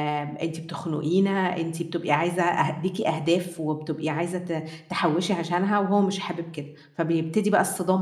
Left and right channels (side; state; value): both; identical; correlation 1.00